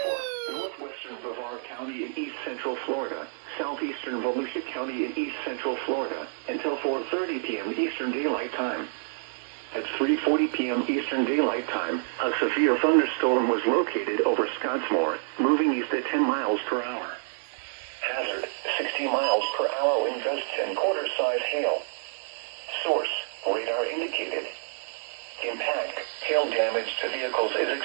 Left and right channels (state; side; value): silent; left; digital silence